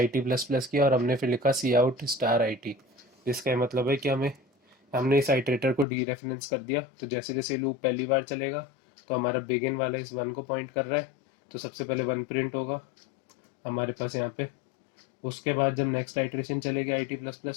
टी प्लस प्लस किया, और हमने फिर लिखा सी आउट स्टार आई टी। इसका मतलब है कि हमने इस आइट्रेटर को डी रेफरेंस कर दिया। तो जैसे जैसे लूप पहली बार चलेगा, तो हमारा बिगिन वाला इस 1 को पॉइंट कर रहा है, तो सबसे पहले 1 प्रिंट होगा हमारे पास यहाँ पे। उसके बाद जब नेक्स्ट आइट्रेशन चलेगी IT प्लस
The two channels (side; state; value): right; drops out; at 5.9 s